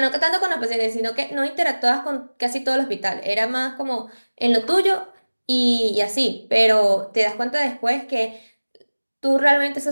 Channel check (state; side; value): inverted; both; correlation -1.00